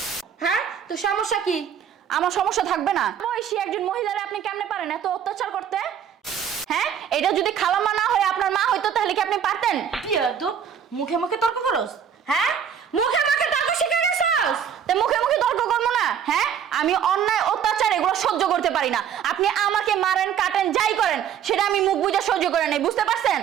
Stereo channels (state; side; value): quieter; left; 8.4 dB